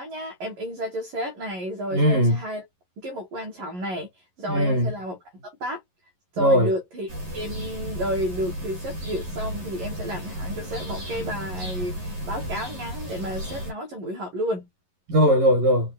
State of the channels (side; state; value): left; late; 11 ms